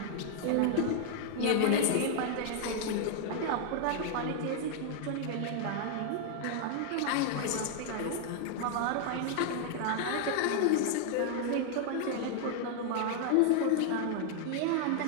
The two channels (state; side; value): different; both; correlation 0.00